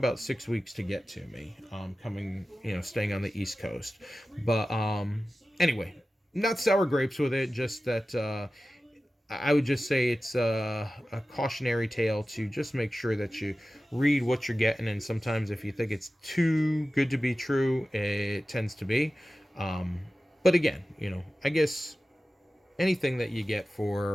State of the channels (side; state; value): both; normal; correlation 0.95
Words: 6 weeks to get to me. Coming, staying on the East Coast, but anyway, not sour grapes with it. Just that I would just say it's a cautionary tale to just make sure that you read what you're getting, and sometimes if you think it's too good to be true, it tends to be. Um, but again, I guess anything that you get